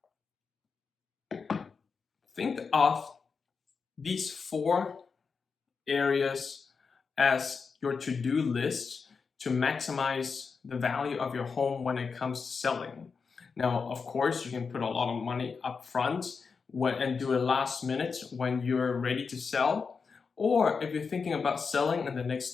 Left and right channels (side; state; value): right; quieter; 5.3 dB